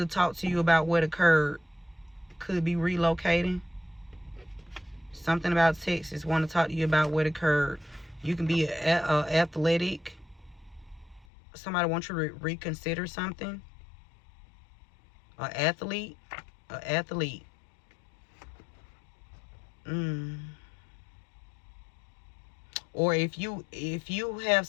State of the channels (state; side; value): drops out; right; at 11.2 s